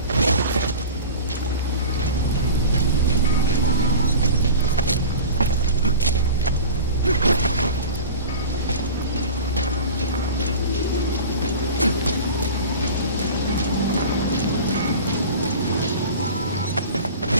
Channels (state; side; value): inverted; both; correlation -0.36